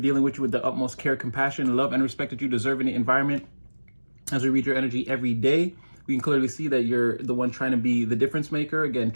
with you with the utmost care, compassion, love, and respect that you deserve in the environment. As we read your energy every day, we can clearly see that you're the one trying to be the difference maker. Again,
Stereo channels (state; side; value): inverted; both; correlation -1.00